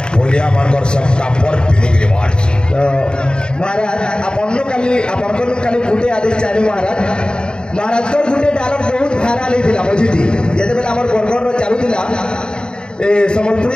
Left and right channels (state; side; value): late; right; 0.049 ms